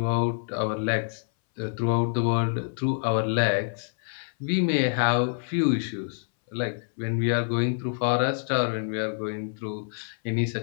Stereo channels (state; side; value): silent; right; 60 dB below the other